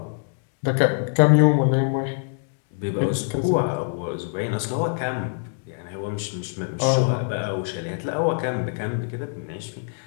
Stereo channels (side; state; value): right; silent; digital silence